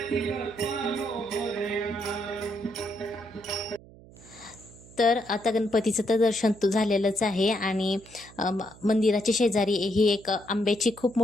तर आता गणपतीचं तर दर्शन झालेलंच आहे आणि मंदिराच्या शेजारी ही एक आंब्याची खूप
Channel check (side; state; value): right; noise; hum, 22 dB below the sound